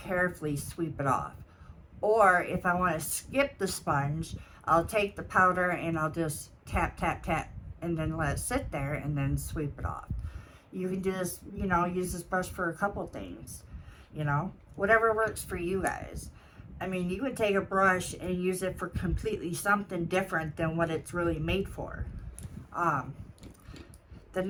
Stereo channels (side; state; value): both; identical; correlation 1.00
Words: sweep it off. Or if I want to skip the sponge, I'll take the powder and I'll just tap, tap, tap, and then let it sit there and then sweep it off. You can do this, use this brush for a couple things, whatever works for you guys. I mean, you could take a brush and use it for completely something different than what it's really made for. The